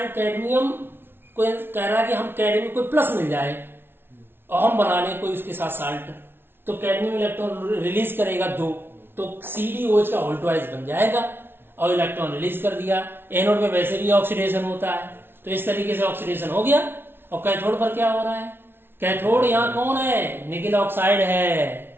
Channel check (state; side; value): late; left; 0.11 ms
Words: कैडमियम को कह रहा है कि हम कैडमियम को प्लस मिल जाए और हम बना लें कोई उसके साथ साल्ट, तो कैडमियम इलेक्ट्रॉन रिलीज करेगा 2, तो CdOH का ऑल्टवाइज बन जाएगा और इलेक्ट्रॉन रिलीज कर दिया। एनोड में वैसे भी ऑक्सीडेशन होता है, तो इस तरीके से ऑक्सीडेशन हो गया। और कैथोड पर क्या हो रहा है? कैथोड यहाँ कौन है? निकिल ऑक्साइड है,